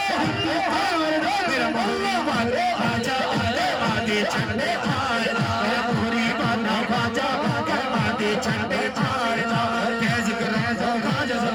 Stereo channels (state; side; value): identical; both; correlation 1.00